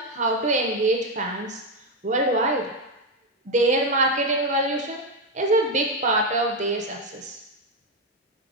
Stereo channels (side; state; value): both; normal; correlation 0.07